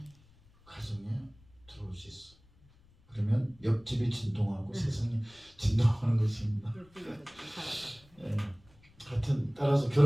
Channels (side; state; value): left; noise; rumble, 28 dB below the sound